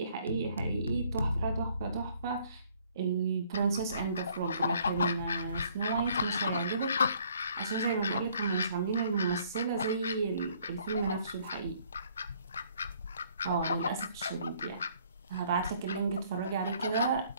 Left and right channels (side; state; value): both; inverted; correlation -0.62